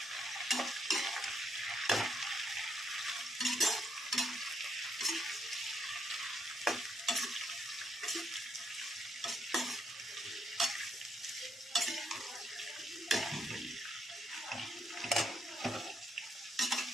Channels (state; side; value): normal; both; correlation 0.77